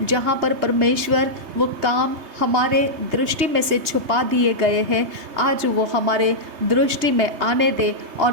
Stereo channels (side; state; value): left; late; 3.2 ms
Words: जहाँ पर परमेश्वर वो काम हमारे दृष्टि में से छुपा दिए गए हैं, आज वो हमारे दृष्टि में आने दे, और